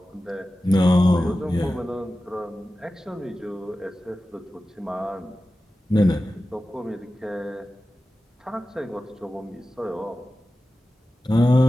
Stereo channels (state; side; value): normal; both; correlation 0.94